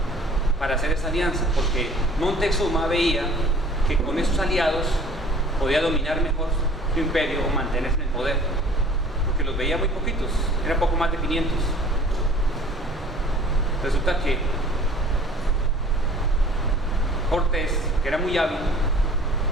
para hacer esa alianza, porque Montezuma veía que con esos aliados podía dominar mejor su imperio o mantenerse en el poder, porque los veía muy poquitos, eran poco más de 500. Resulta que Cortés, que era muy hábil,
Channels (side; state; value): both; normal; correlation 0.49